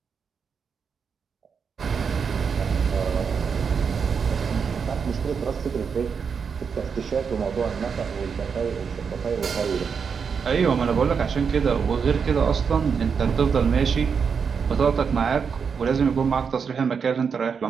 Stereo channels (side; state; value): left; quieter; 6.2 dB